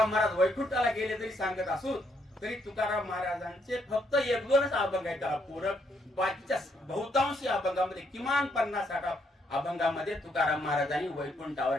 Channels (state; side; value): normal; both; correlation 0.73